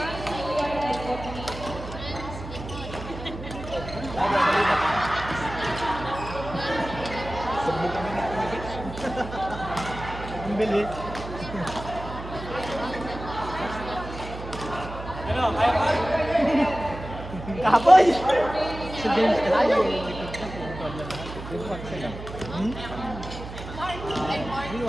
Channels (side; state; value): right; noise; hum, 11 dB below the sound